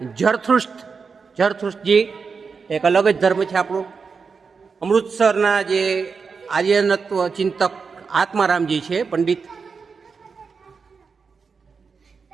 જરથુષ્ટજી, એક અલગ જ ધર્મ છે આપણો। અમૃતસરના જે આર્યનત્વ ચિંતક આત્મારામજી છે પંડિત।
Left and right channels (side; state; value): left; quieter; 5.3 dB